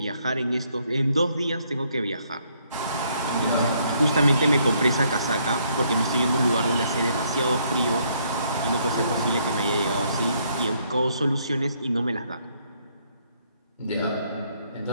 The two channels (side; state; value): both; inverted; correlation -0.70